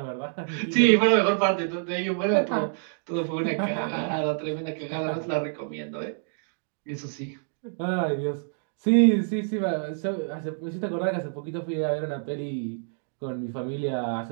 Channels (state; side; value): silent; left; digital silence